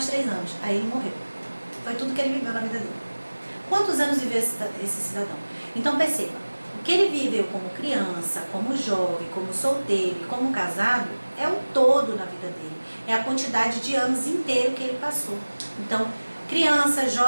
3 anos. Aí, ele morreu. Foi tudo que ele viveu na vida dele. Quantos anos viveu esse cidadão? Então, perceba. O que ele viveu como criança, como jovem, como solteiro e como casado é o todo na vida dele. É a quantidade de anos inteiro que ele passou. Então, criança,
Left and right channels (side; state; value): both; inverted; correlation -1.00